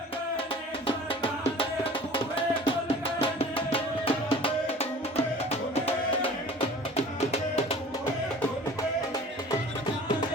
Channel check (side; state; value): both; normal; correlation 0.44